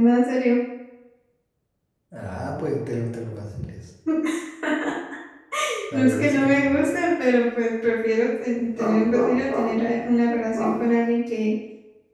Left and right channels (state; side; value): identical; both; correlation 1.00